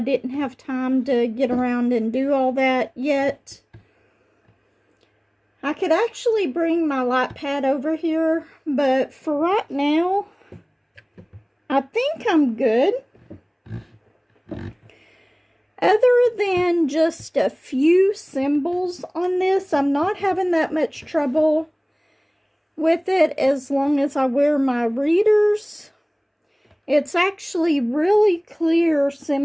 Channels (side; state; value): both; identical; correlation 1.00